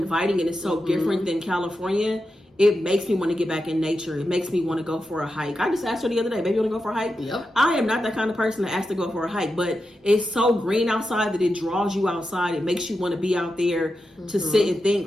and it's so different than California. It makes me want to get back in nature. It makes me want to go for a hike. I just asked her the other day, baby, you want to go for a hike? Yep. I am not that kind of person to ask to go for a hike, but it's so green outside that it draws you outside. It makes you want to be out there to sit and think.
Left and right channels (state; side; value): normal; both; correlation 0.89